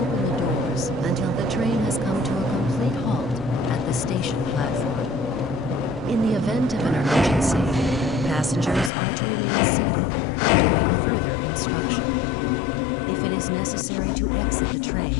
the doors until the train has come to a complete halt at the station platform. In the event of an emergency, passengers are to remain seated and await further instruction. If it is necessary to exit the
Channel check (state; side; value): drops out; right; at 8.9 s